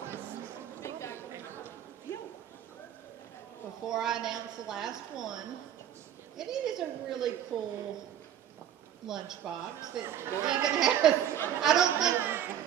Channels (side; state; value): left; quieter; 10.4 dB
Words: Before I announce the last one, and it is a really cool lunchbox that even has,